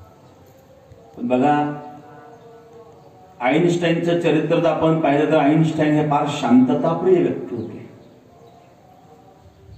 बघा, आईन्स्टाईनचं चरित्र जर आपण पाहिलं तर आईन्स्टाईन हे फार शांतताप्रिय व्यक्ती होते.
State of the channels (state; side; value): identical; both; correlation 1.00